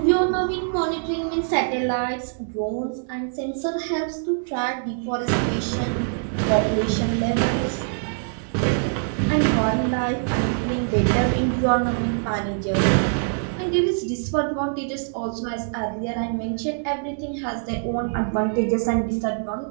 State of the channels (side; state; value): left; silent; digital silence